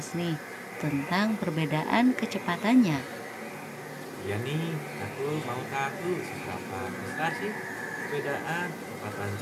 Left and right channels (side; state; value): both; identical; correlation 1.00